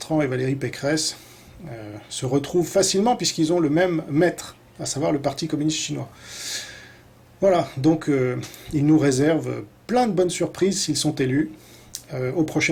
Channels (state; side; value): identical; both; correlation 1.00